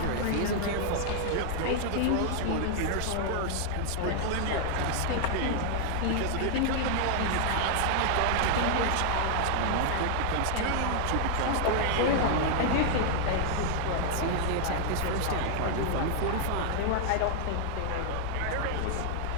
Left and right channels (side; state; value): both; different; correlation 0.00